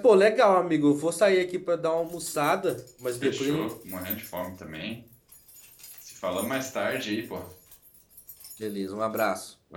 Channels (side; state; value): both; identical; correlation 1.00